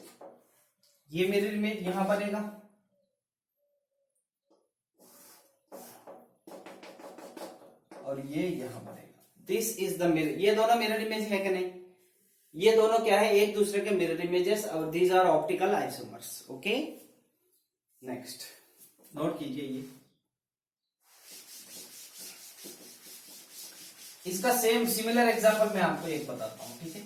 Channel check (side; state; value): both; identical; correlation 1.00